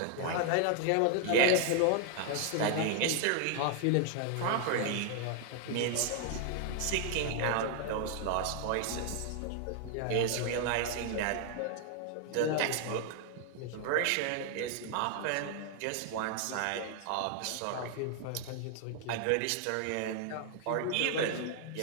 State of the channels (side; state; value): both; different; correlation 0.00